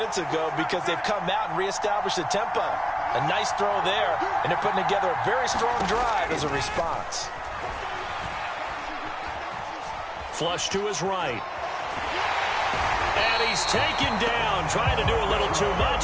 ago because they've come out and reestablished the tempo. A nice throw there, and they're putting together a very strong drive as a response. Flush to his right. And he's taken down, trying to do a little too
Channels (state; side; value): identical; both; correlation 1.00